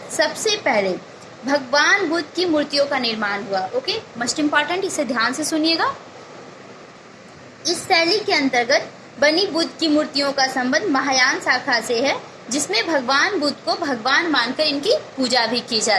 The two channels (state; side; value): identical; both; correlation 1.00